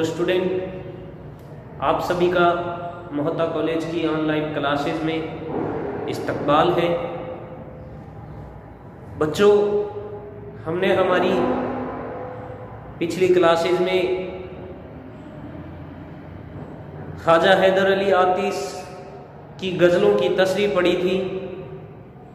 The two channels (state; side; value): identical; both; correlation 1.00